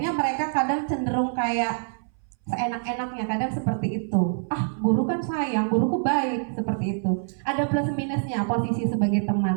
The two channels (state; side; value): silent; left; 60 dB below the other